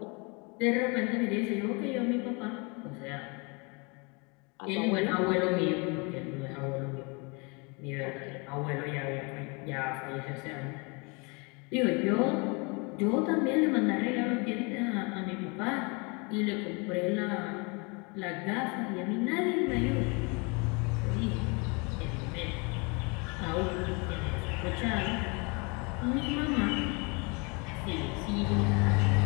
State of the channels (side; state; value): right; quieter; 30.7 dB